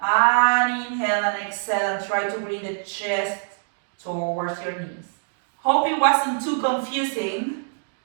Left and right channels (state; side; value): silent; left; digital silence